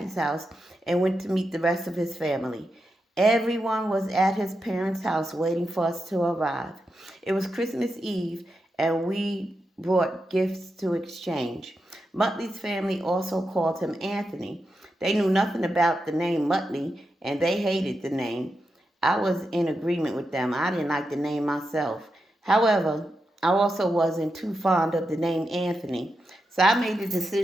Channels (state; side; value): normal; both; correlation 0.87